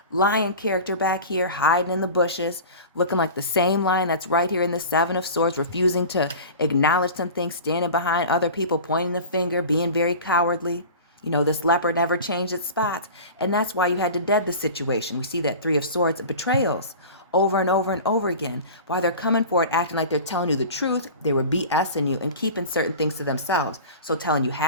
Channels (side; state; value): both; inverted; correlation -0.36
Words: lion character back here hiding in the bushes, looking like the same lion that's right here in the 7 of Swords, refusing to acknowledge some things, standing behind other people, pointing the finger, being very cowardly. You know, this leopard never changed its spots. And that's why you had to dead the situation. We see that 3 of Swords, betrayals, over and over and over again. While they're coming for it, acting like they're telling you the truth, they were BSing you and keeping certain things to themselves. So telling you